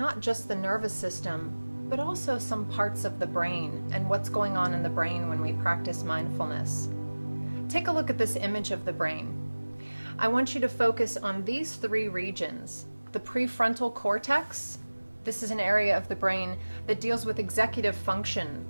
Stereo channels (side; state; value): both; inverted; correlation -1.00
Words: just the nervous system, but also some parts of the brain and what's going on in the brain when we practice mindfulness. Take a look at this image of the brain. I want you to focus on these three regions. The prefrontal cortex, this is an area of the brain that deals with executive function,